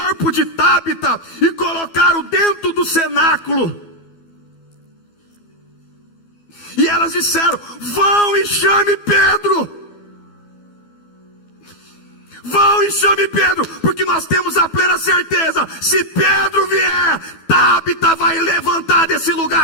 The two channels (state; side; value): late; right; 12 ms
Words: de Tábita e colocaram dentro do cenáculo. E elas disseram: vão e chame Pedro. Vão e chame Pedro, porque nós temos a plena certeza, se Pedro vier, Tábita vai levantar desse